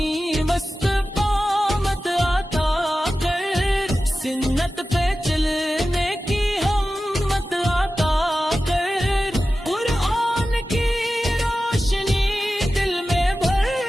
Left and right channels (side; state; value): both; normal; correlation 0.94